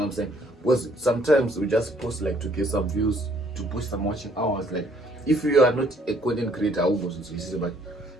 what I'm saying? Because sometimes we just post like to get some views, to push some watching hours. Like if you are not a content creator, but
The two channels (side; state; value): both; normal; correlation 0.63